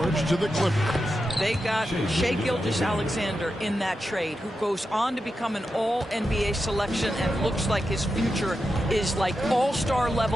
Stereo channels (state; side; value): normal; both; correlation 0.89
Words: to the Clippers. They got Shai Gilgeous-Alexander in that trade, who goes on to become an all-NBA selection and looks like his future is like all-star